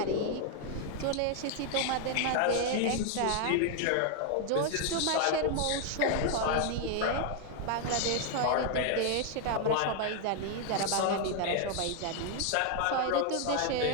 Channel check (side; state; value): both; different; correlation 0.00